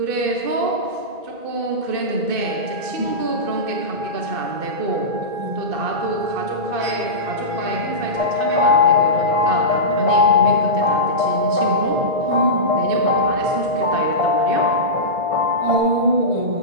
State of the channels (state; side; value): late; left; 2.6 ms